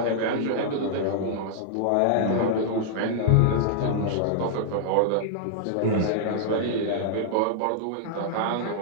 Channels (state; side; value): different; both; correlation -0.01